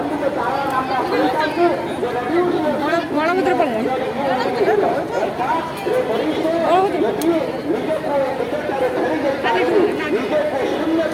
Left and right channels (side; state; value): both; identical; correlation 1.00